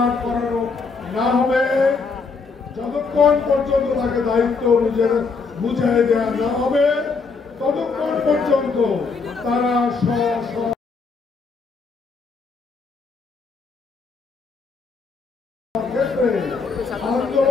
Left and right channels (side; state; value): right; quieter; 4.6 dB